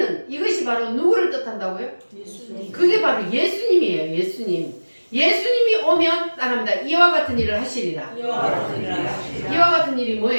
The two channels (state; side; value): inverted; both; correlation -1.00